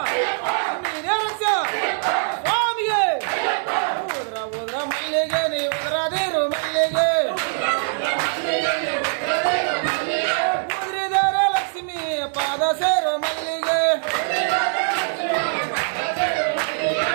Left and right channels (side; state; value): left; silent; digital silence